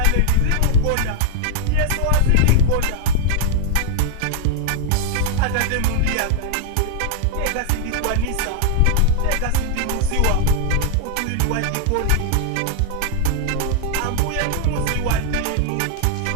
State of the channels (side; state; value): both; different; correlation -0.01